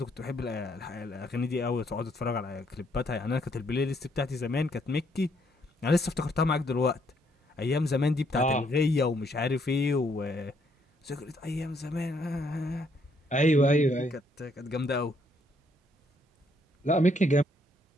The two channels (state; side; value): normal; both; correlation 0.70